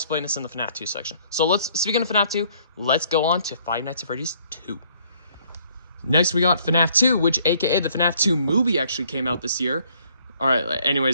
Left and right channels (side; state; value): both; inverted; correlation -0.63